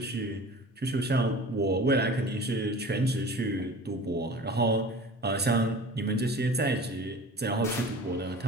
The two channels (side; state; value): both; normal; correlation 0.39